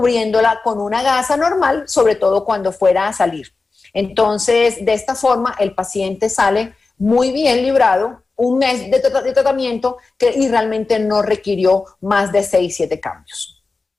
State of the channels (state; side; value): quieter; right; 3.9 dB